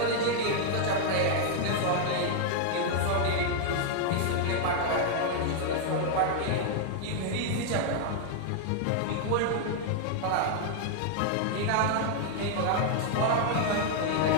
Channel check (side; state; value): both; different; correlation 0.00